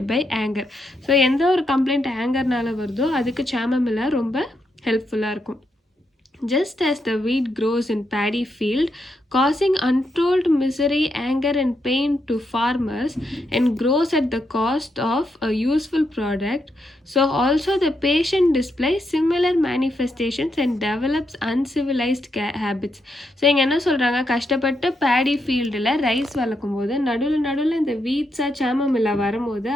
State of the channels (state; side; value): normal; both; correlation 0.81